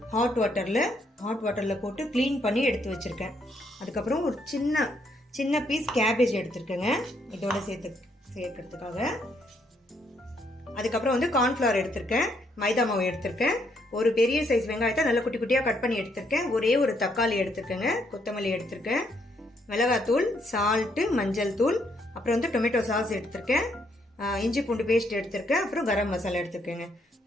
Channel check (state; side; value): normal; both; correlation 0.73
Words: ஹாட் வாட்டரில் போட்டு க்ளீன் பண்ணி எடுத்து வச்சுருக்கேன். அதுக்கப்புறம் ஒரு சின்ன பீஸ் கேபேஜ் எடுத்திருக்கேங்க இதோட சேர்க்கறதுக்காக. அதுக்கப்புறம் வந்து கார்ன்ஃப்ளவர் எடுத்திருக்கேன், மைதா மாவு எடுத்திருக்கேன், ஒரு பெரிய சைஸ் வெங்காயத்தை நல்லா குட்டி குட்டியாக கட் பண்ணி எடுத்திருக்கேன், ஒரே ஒரு தக்காளி எடுத்திருக்கேங்க, கொத்தமல்லி எடுத்திருக்கேன், மிளகாத்தூள், சால்ட்டு, மஞ்சள் தூள், அப்புறம் வந்து டொமேட்டோ சாஸ் எடுத்திருக்கேன், இஞ்சி பூண்டு பேஸ்ட் எடுத்திருக்கேன், அப்புறம் கரம் மசாலா எடுத்திருக்கேங்க.